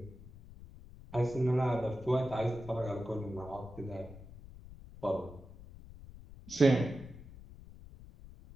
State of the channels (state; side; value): noise; left; rumble, 17 dB below the sound